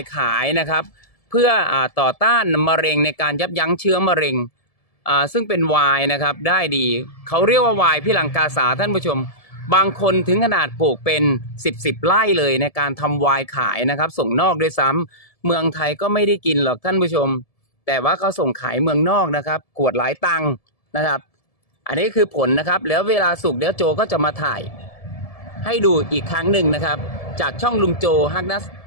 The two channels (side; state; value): right; late; 1.7 ms